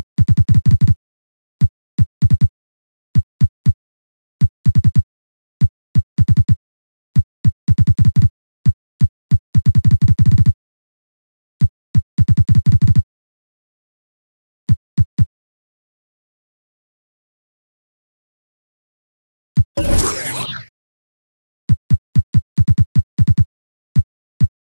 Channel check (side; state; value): both; inverted; correlation -1.00